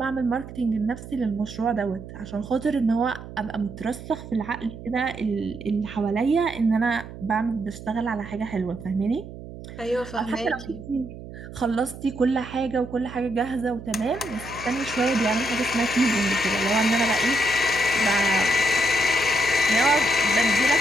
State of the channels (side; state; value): right; noise; hum, 13 dB below the sound